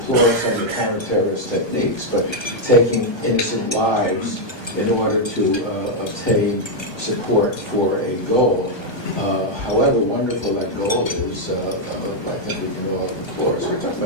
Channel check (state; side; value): late; right; 1.3 ms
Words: some of the counter-terrorist techniques, but taking innocent lives in order to obtain support for a goal, however wonderful that goal is, I think we can all deplore. So we're talking